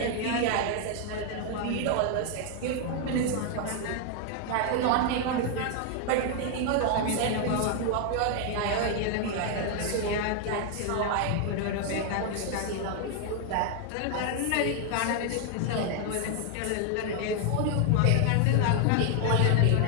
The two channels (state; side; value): different; both; correlation 0.00